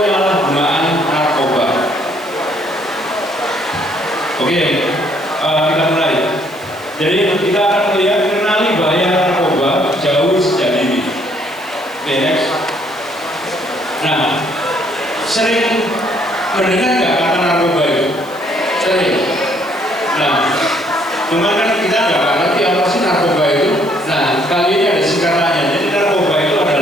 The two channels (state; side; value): noise; right; hiss, 23 dB below the sound